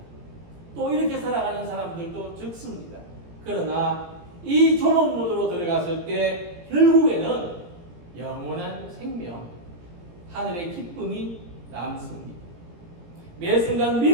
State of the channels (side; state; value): left; late; 17 ms